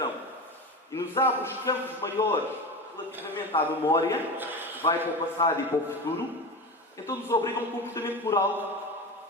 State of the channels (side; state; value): both; normal; correlation 0.25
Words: e nos abre os campos maiores relativamente à memória, que vai para o passado e para o futuro, então nos obriga a um comportamento